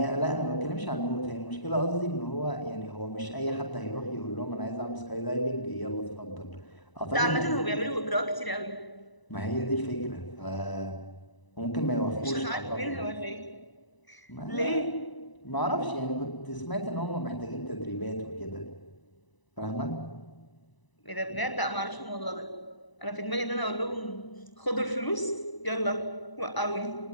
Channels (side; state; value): right; late; 1.0 ms